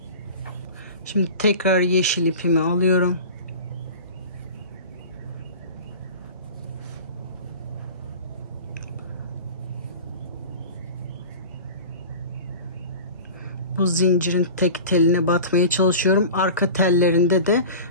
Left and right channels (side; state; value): both; inverted; correlation -0.36